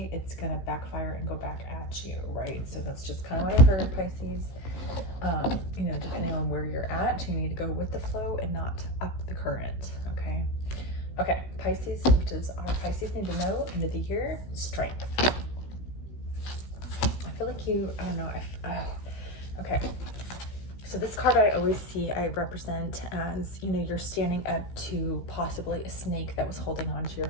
it's going to backfire and go back at you, right? So that's just kind of what I heard, Pisces. You know, depending on where you're at, you need to go with the flow and not up the current, okay? Okay, Pisces, what does our Pisces need to know? End of the year, strength. I feel like you, I don't know, okay. So this card I always see, I represent as, you know, you're standing up to possibly a snake that was holding on to your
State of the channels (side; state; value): right; late; 16 ms